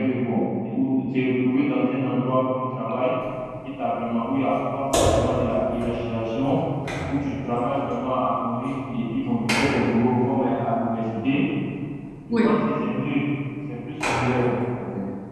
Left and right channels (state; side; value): identical; both; correlation 1.00